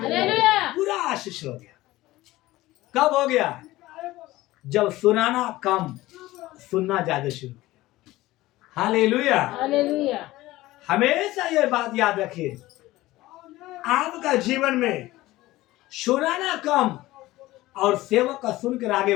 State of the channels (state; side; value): quieter; right; 17.6 dB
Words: पूरा आशीष हो गया। कब हो गया? जब सुनाना कम, सुनना ज्यादा शुरू किया। हालेलुया। हमेशा ये बात याद रखिए, आपका जीवन में सुनाना कम और सेवक का सुनकर आगे